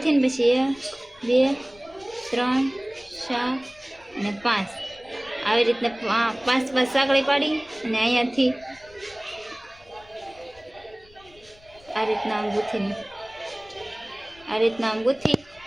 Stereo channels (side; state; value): left; noise; rumble, 26 dB below the sound